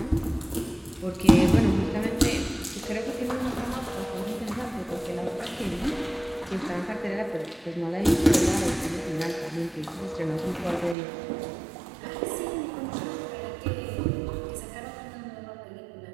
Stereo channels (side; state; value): left; drops out; at 11.0 s